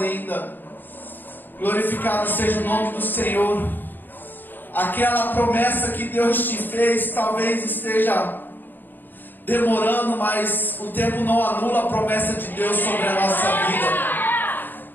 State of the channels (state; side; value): late; right; 0.091 ms